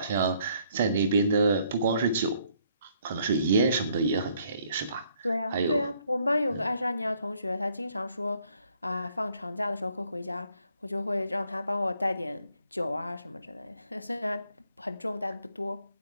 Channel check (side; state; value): both; inverted; correlation -0.67